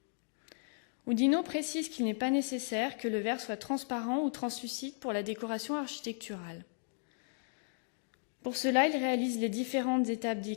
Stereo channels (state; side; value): silent; right; digital silence